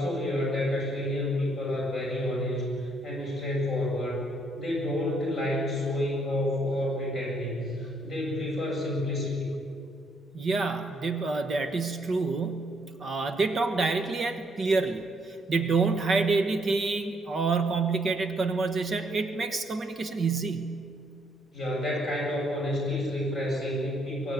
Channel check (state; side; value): normal; both; correlation 0.70